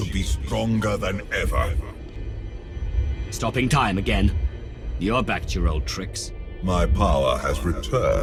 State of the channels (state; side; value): identical; both; correlation 1.00